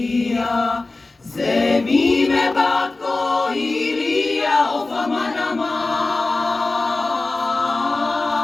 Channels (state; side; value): quieter; right; 3.3 dB